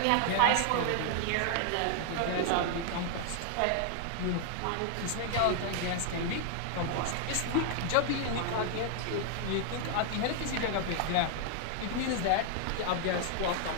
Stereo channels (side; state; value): both; different; correlation 0.00